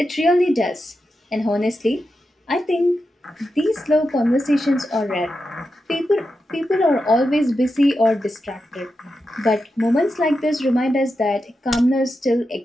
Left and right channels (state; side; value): normal; both; correlation 0.89